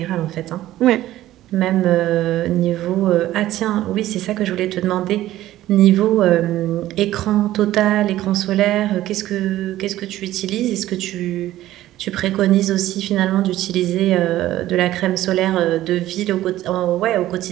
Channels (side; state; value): left; quieter; 14.5 dB